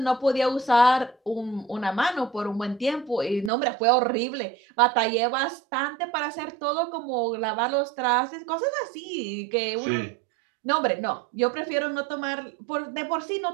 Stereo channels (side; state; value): left; drops out; at 3.5 s